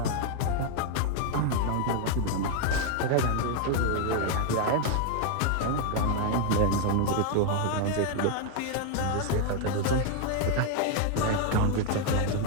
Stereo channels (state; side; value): different; both; correlation 0.00